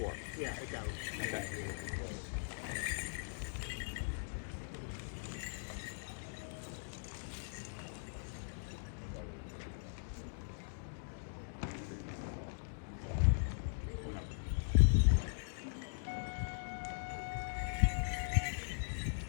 Yeah, I got it. Okay.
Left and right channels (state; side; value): silent; right; digital silence